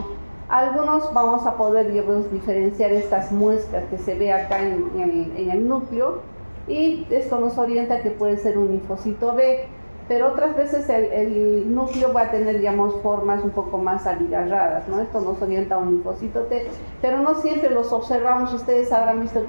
Algunos vamos a poder, digamos, diferenciar estas muestras que se ve acá en el núcleo, y esto nos orienta que puede ser un linfocito B, pero otras veces el núcleo va a tener, digamos, formas un poco más abigarradas, ¿no? Esto nos orienta a un linfocito T, pero no siempre los observamos. Ustedes habrán visto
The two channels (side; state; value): both; inverted; correlation -1.00